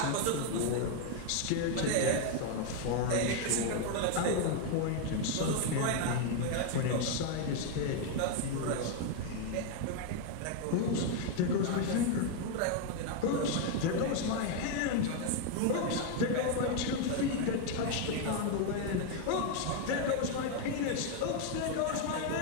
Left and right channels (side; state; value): both; different; correlation 0.01